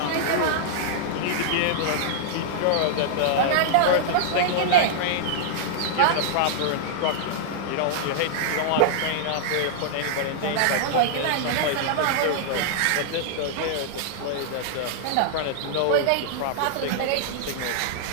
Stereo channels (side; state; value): both; different; correlation -0.01